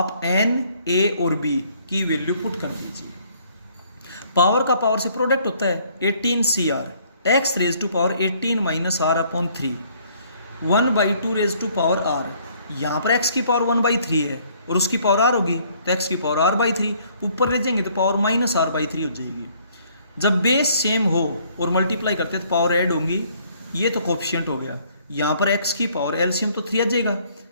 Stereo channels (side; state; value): both; inverted; correlation -0.62